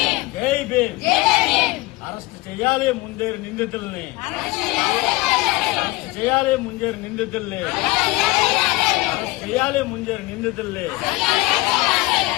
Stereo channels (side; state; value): right; quieter; 21.2 dB